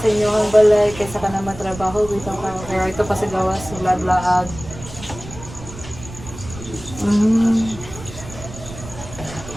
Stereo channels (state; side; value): noise; right; rumble, 14 dB below the sound